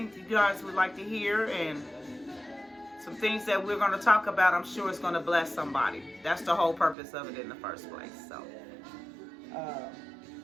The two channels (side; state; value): left; drops out; at 7.0 s